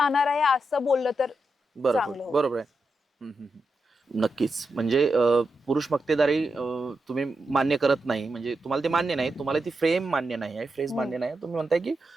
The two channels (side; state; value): both; normal; correlation 0.87